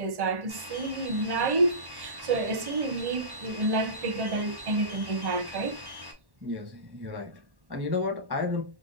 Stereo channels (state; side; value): late; left; 1.1 ms